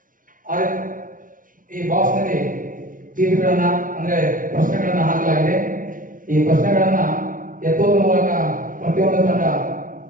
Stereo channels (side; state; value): left; late; 0.39 ms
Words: ಈ ಬಾಕ್ಸ್ ನಲ್ಲಿ ಚೀಟಿಗಳನ್ನ ಅಂದ್ರೆ ಪ್ರಶ್ನೆಗಳನ್ನ ಹಾಕಲಾಗಿದೆ. ಈ ಪ್ರಶ್ನೆಗಳನ್ನ ಎತ್ತುವುದರ ಮೂಲಕ ಪ್ರತಿಯೊಂದು ತಂಡ